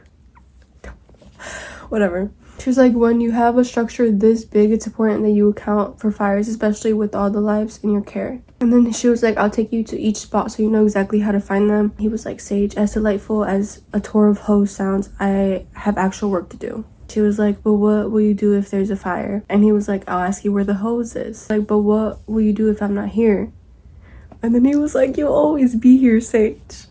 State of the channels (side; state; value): both; identical; correlation 1.00